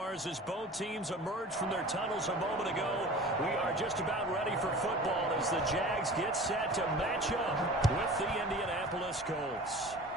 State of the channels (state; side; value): normal; both; correlation 0.40